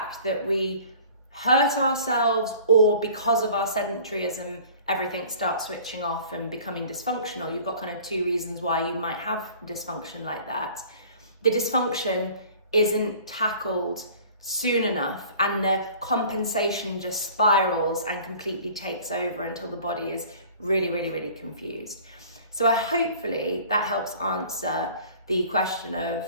that we hurt ourselves, or because of our sedentaryism, everything starts switching off and becoming dysfunctional. You've got kind of two reasons why you might have dysfunction like that. The dysfunction isn't tackled soon enough and the compensation just spirals and completely takes over until the body is really, really, really confused. So hopefully that helps answer the question of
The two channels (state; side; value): inverted; both; correlation -0.48